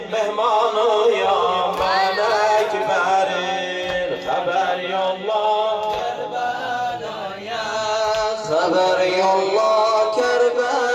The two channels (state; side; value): identical; both; correlation 1.00